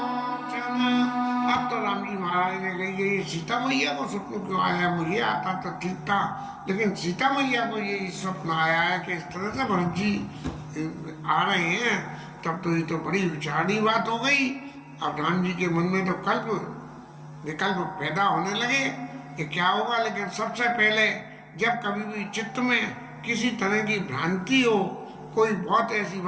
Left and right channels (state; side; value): identical; both; correlation 1.00